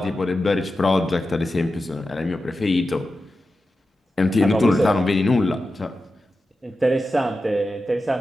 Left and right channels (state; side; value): normal; both; correlation 0.92